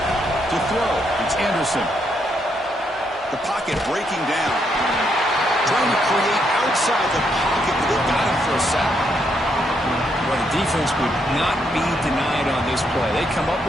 To throw, it's Anderson. The pocket breaking down. Trying to create outside the pocket, but they got him for a sack. Well, the defense would not be denied on this play. They come up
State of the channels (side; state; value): both; normal; correlation 0.76